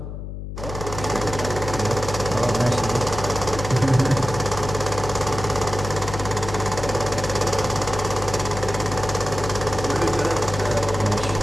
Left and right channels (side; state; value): left; noise; hum, 8 dB below the sound